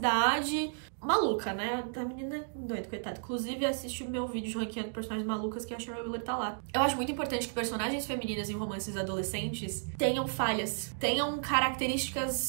Maluca, né? A menina é doida, coitada. Inclusive, assiste o meu vídeo de ranqueando personagens malucas, que a Shara Wheeler tá lá. Eu acho muito importante que personagens femininas em romances adolescentes tenham falhas, tenham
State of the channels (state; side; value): silent; left; digital silence